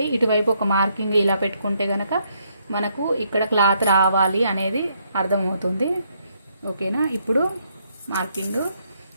ఇటువైపు ఒక మార్కింగ్ ఇలా పెట్టుకుంటే కనుక మనకు ఇక్కడ క్లాత్ రావాలి అనేది అర్థమవుతుంది. ఓకేనా. ఇప్పుడు మార్కింగ్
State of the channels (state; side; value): inverted; both; correlation -0.73